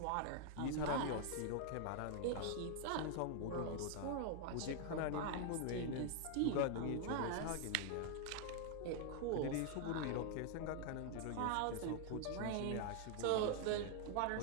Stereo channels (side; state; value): both; different; correlation 0.00